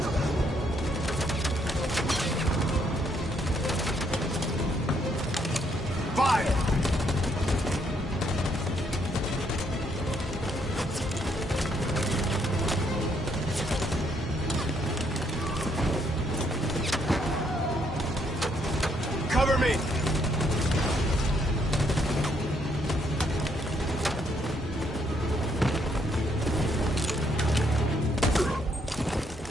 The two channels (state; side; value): normal; both; correlation 0.72